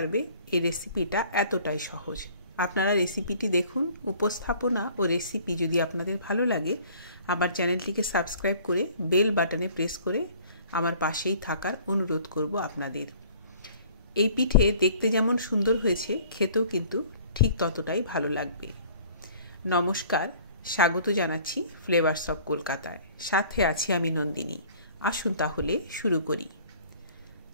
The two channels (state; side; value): inverted; both; correlation -0.52